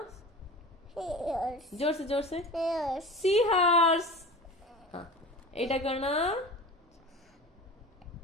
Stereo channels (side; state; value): both; normal; correlation 0.35